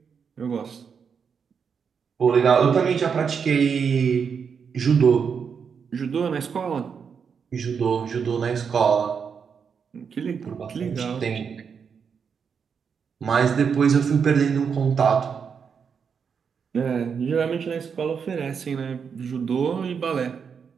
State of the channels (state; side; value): quieter; left; 6.5 dB